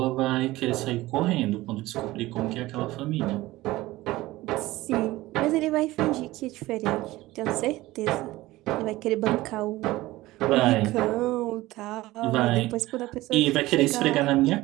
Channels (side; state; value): left; quieter; 18.0 dB